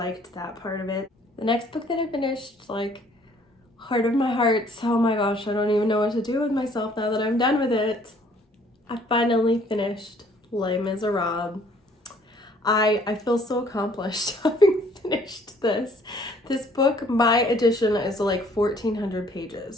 that part of it. The next book that I finished, like, heart of my hearts, oh my gosh, I don't even know what to do with myself now that I'm done with it. I finally finished Les Miserables. I feel so accomplished having finished this. This book, my edition, is like 1,400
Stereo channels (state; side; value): normal; both; correlation 0.60